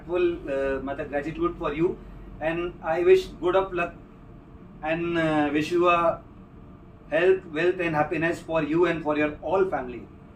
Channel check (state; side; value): identical; both; correlation 1.00